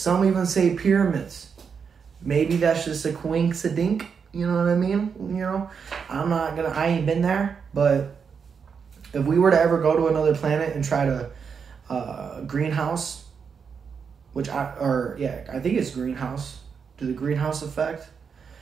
even say pyramids. Maybe that's just a coincidence. You know what I mean? You know, I ain't been there, but if we were to ever go to another planet and try to greenhouse, I think it's greenhouse, do the greenhouse effect.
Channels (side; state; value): left; quieter; 6.3 dB